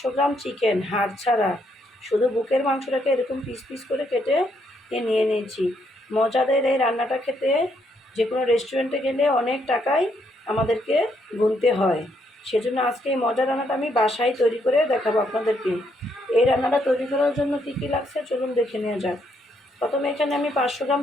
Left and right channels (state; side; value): normal; both; correlation 0.74